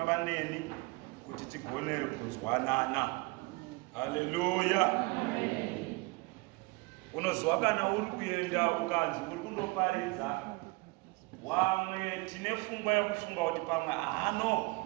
neni kuti tigone kunzwanana. Haleluya. Unoziva kana uri kuenda ukanzi uri kundoparidza wamwe tine pfungwa yekufunga kuti pamwe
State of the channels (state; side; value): quieter; left; 25.4 dB